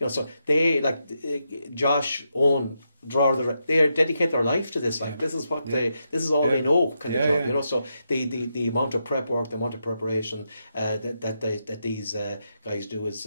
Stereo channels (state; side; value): inverted; both; correlation -0.83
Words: So they, like Josh, Owen, they dedicate their life to this. This is what this is all they know, kind of job. So the amount of prep work, the amount of preparation that these guys do